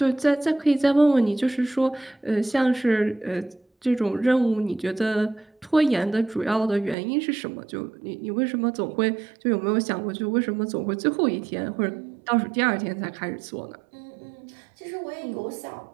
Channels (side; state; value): left; drops out; at 7.0 s